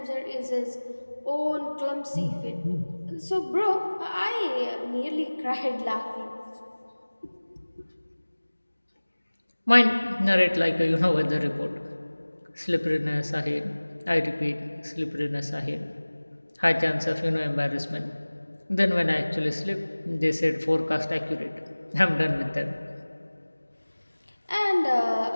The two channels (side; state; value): both; inverted; correlation -1.00